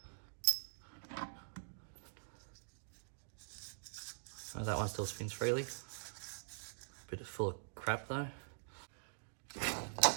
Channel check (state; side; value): silent; left; digital silence